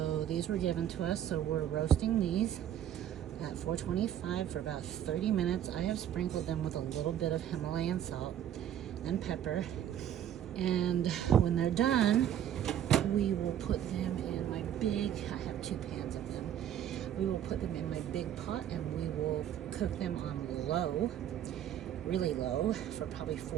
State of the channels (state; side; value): quieter; left; 10.5 dB